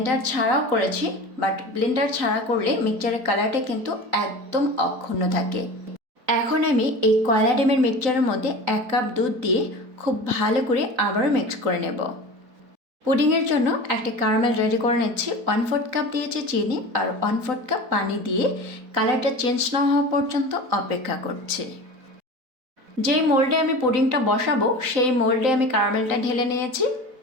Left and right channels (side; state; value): left; late; 3.9 ms